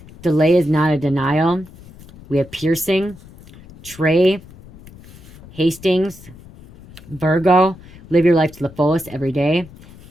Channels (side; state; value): left; noise; rumble, 21 dB below the sound